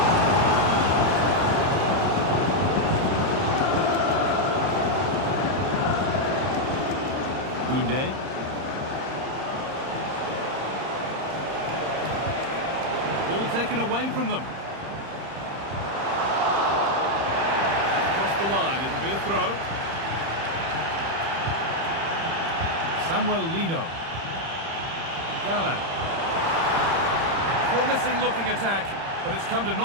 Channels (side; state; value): left; late; 30 ms